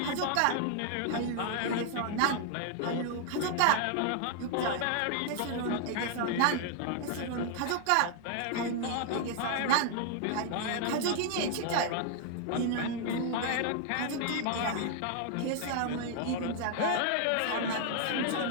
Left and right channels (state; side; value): different; both; correlation 0.00